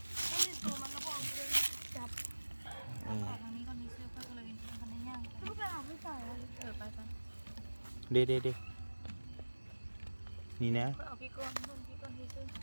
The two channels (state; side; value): inverted; both; correlation -1.00